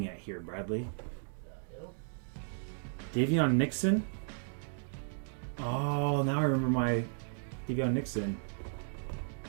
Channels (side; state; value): left; silent; digital silence